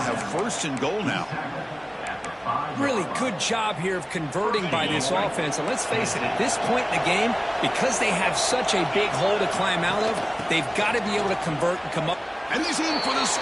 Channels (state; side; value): identical; both; correlation 1.00